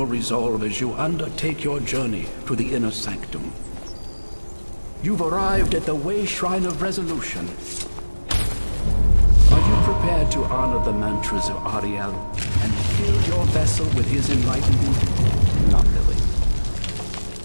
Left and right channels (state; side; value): inverted; both; correlation -1.00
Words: resolve as you undertake your journey to the inner sanctum. You've arrived at the Way Shrine of Resolution. Are you prepared to honor the mantras of Ariel and fill your vessel with his enlightenment? Not really.